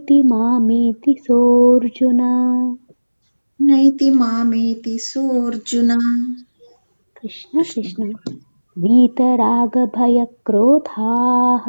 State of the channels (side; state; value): both; inverted; correlation -1.00